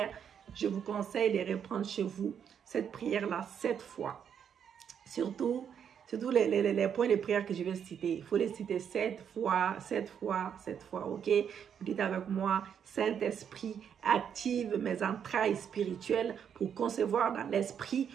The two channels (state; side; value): quieter; left; 8.1 dB